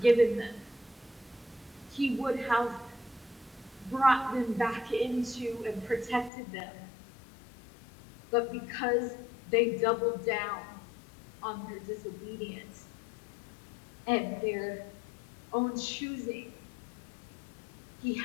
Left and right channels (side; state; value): right; drops out; at 6.3 s